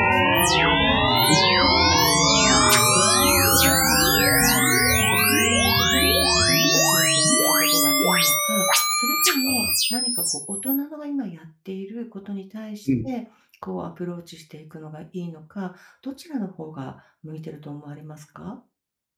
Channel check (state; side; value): identical; both; correlation 1.00